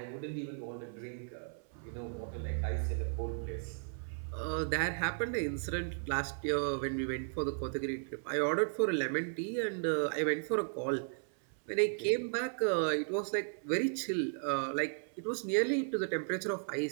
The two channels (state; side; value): silent; left; 54 dB below the other